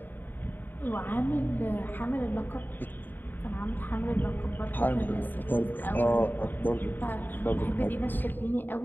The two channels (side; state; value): right; late; 0.091 ms